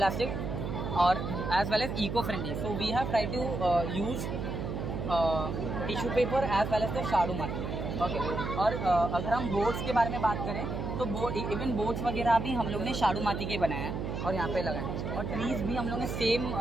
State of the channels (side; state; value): right; noise; hum, 4 dB below the sound